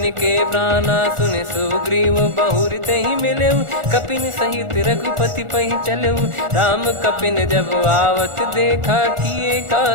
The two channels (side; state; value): left; late; 1.4 ms